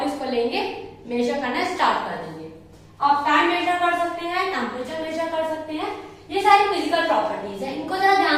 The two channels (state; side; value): identical; both; correlation 1.00